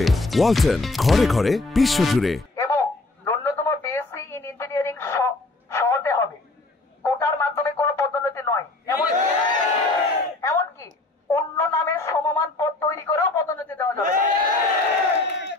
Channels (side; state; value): right; quieter; 3.1 dB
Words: ওয়ালটন, ঘরে ঘরে, বিশ্বজুড়ে। এবং ন্যূনতম বিএসসি ইন ইঞ্জিনিয়ারিং হতে হবে, কোটার মাধ্যমে কোনো পদোন্নতি নয়। এমনকি অন্য নামে সমমান পদ তৈরি করেও পদোন্নতি দেওয়া যাবে।